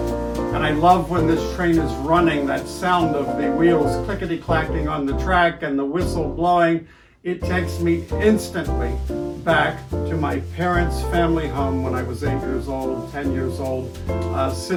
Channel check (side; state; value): both; identical; correlation 1.00